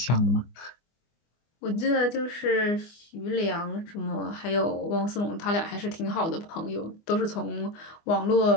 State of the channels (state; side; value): late; right; 24 ms